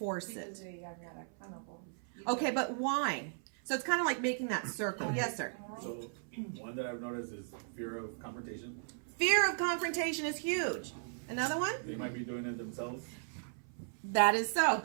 Because it? they are not accountable. Okay, but why? So it's kind of like making that circle. Yes, sir. So one that I've noticed is fear of confrontation. Fear of confrontation is huge. Another one? They might be doing it themselves. That is so.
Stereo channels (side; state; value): left; silent; 53 dB below the other